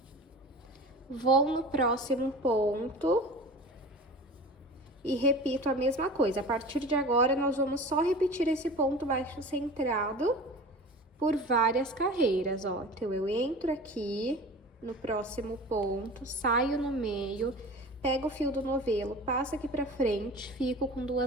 Vou no próximo ponto e repito a mesma coisa. A partir de agora, nós vamos só repetir esse ponto baixo centrado por várias carreiras, ó. Então, eu entro aqui no próximo ponto, saio no meio, pego o fio do novelo, passo aqui pra frente, fico com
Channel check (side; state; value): both; normal; correlation 0.37